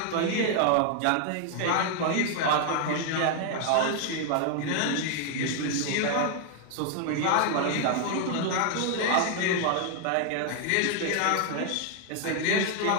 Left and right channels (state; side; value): different; both; correlation 0.00